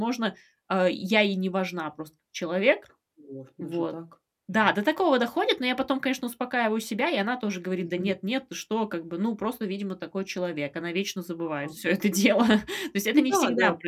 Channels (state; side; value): identical; both; correlation 1.00